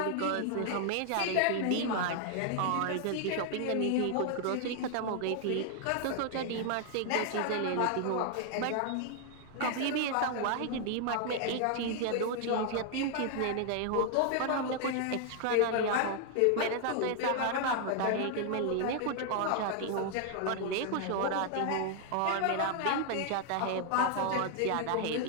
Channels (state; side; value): different; both; correlation 0.00